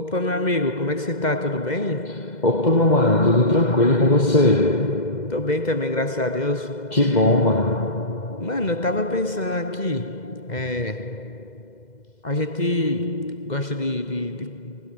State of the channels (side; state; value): right; late; 2.0 ms